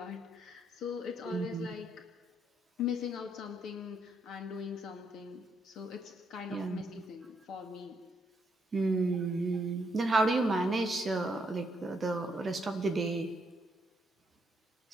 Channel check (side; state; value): both; normal; correlation 0.75